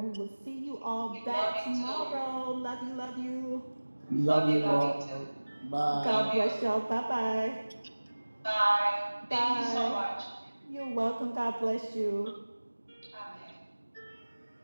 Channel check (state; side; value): inverted; both; correlation -1.00